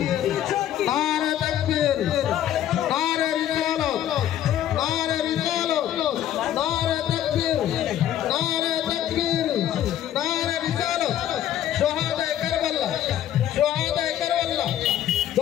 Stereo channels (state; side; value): quieter; right; 11.4 dB